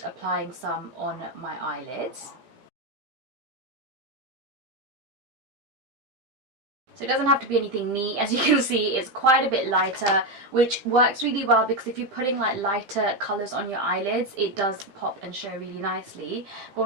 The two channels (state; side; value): late; left; 15 ms